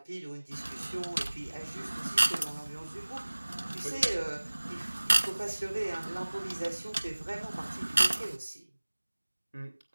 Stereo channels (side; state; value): both; inverted; correlation -1.00